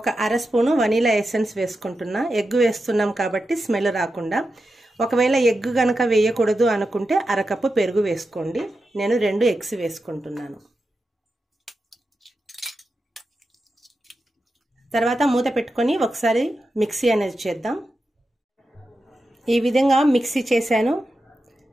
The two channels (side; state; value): both; normal; correlation 0.90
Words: అర స్పూను వనీలా ఎసెన్స్ వేసుకుంటున్నా. ఎగ్ వేస్తున్నాం కాబట్టి స్మెల్ రాకుండా. ఒకవేళ ఎగ్ కనుక వేయకూడదు అనుకుంటే అరకప్పు పెరుగు వేసుకోండి. నేను 2 ఎగ్స్ వేసుకుంటున్నాను. తర్వాత మూత పెట్టుకొని ఒకసారి మిక్సీ అనేది చేద్దాం. ఈ విధంగా మిక్సీ చేశాను.